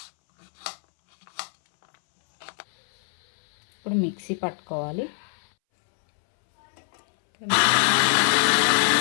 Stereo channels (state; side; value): silent; right; 63 dB below the other